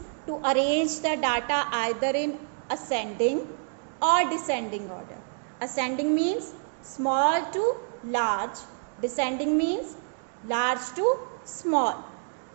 to arrange the data either in ascending or descending order. Ascending means small to large. Descending means large to small.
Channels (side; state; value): left; silent; digital silence